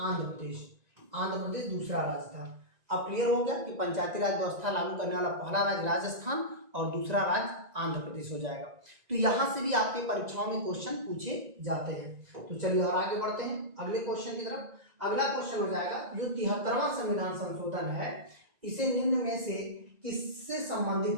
प्रदेश दूसरा राज्य था। अब क्लियर हो गया कि पंचायती राज व्यवस्था लागू करने वाला पहला राज्य राजस्थान और दूसरा राज्य आंध्र प्रदेश हो जाएगा। तो यहाँ से भी आपके परीक्षाओं में क्वेश्चन पूछे जाते हैं। तो चलिए और आगे बढ़ते हैं अगले क्वेश्चन की तरफ। अगला क्वेश्चन हो जाएगा जो 73वां संविधान संशोधन है इसे निम्न में से किससे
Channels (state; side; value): late; left; 1.9 ms